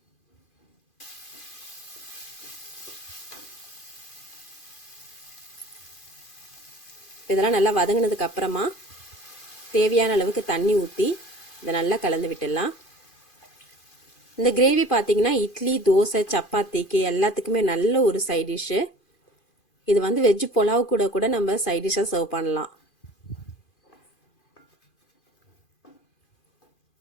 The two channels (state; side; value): late; right; 2.5 ms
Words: இதெல்லாம் நல்லா வதங்கினதுக்கு அப்புறமா தேவையான அளவுக்கு தண்ணி ஊற்றி இதை நல்லா கலந்து விட்டுடலாம். இந்த கிரேவி பார்த்தீங்கன்னா இட்லி, தோசை, சப்பாத்திக்கு எல்லாத்துக்குமே நல்ல ஒரு சைட் டிஷ்ஷு. இது வெஜ் புலாவ் கூட நம்ம சைட் டிஷ்ஷாக சர்வ் பண்ணலாம்.